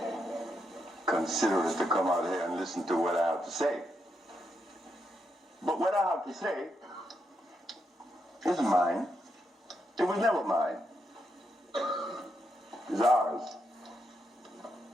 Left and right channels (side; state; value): both; normal; correlation 0.81